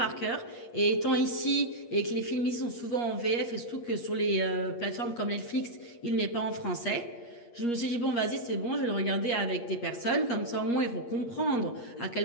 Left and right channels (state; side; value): late; right; 8.5 ms